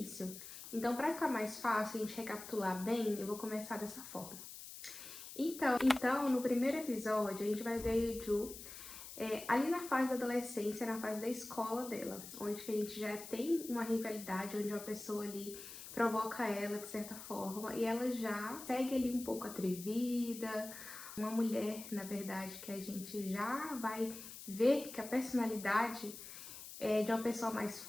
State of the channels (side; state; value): left; noise; hiss, 12 dB below the sound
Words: Então, para ficar mais fácil a gente recapitular bem, eu vou começar dessa forma. Então, no primeiro episódio, a gente vai ver a Yeju ali na fase da adolescência, na fase da escola dela, onde que a gente já tem uma rivalidade, onde uma pessoa ali provoca ela de certa forma, e ela já segue ali um pouco atrevida, uma mulher, na verdade, que a gente já vai ver que a personalidade é de uma pessoa mais